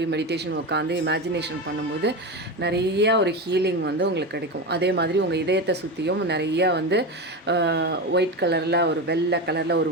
மெடிடேஷன் உட்காந்து இமேஜினேஷன் பண்ணும்போது நிறைய ஒரு ஹீலிங் வந்து உங்களுக்கு கிடைக்கும். அதே மாதிரி உங்கள் இதயத்தை சுற்றியும் நிறைய வந்து ஒயிட் கலரில் ஒரு வெள்ளை கலரில் ஒரு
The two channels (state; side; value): normal; both; correlation 0.20